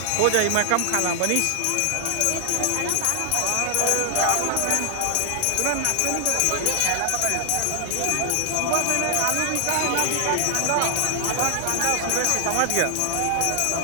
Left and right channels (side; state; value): both; different; correlation 0.00